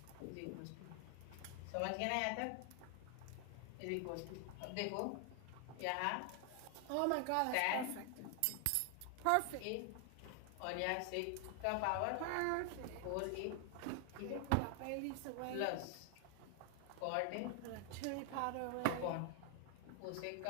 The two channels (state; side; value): different; both; correlation 0.00